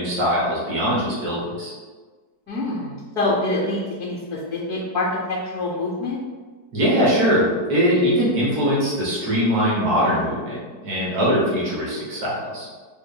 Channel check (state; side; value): late; left; 4.6 ms